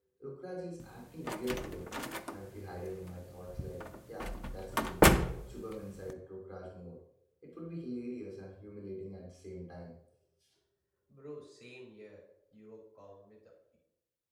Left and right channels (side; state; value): both; identical; correlation 1.00